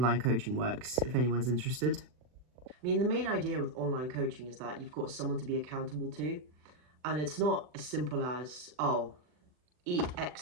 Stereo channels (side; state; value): left; late; 40 ms